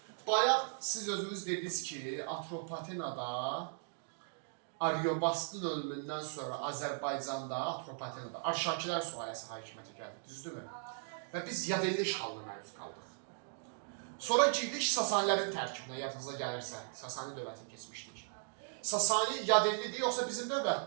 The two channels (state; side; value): silent; left; digital silence